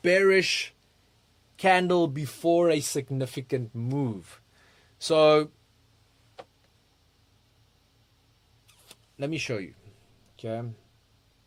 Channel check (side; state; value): both; identical; correlation 1.00